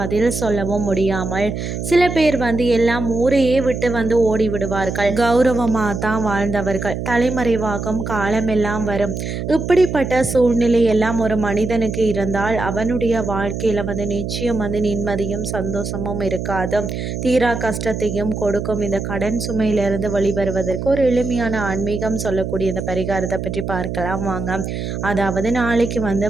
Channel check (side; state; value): right; noise; hum, 5 dB below the sound